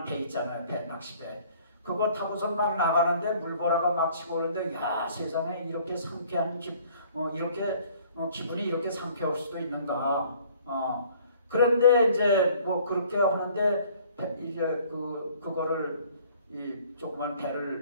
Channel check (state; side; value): inverted; both; correlation -0.56